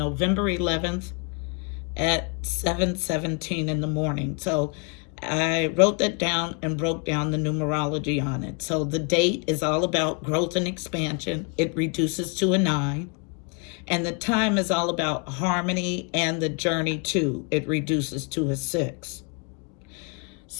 11th at 7:17 in the morning. So I wrote that down and broke down the numerology on it. So the date is all about growth and expansion. It reduces to a 9. And the time is all about harmony and the journey too. It reduces to a 6.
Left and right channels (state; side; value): quieter; right; 34.5 dB